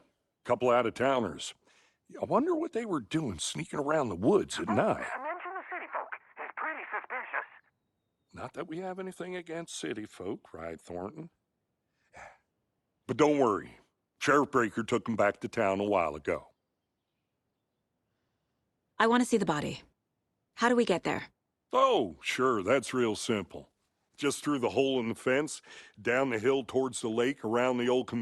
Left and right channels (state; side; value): identical; both; correlation 1.00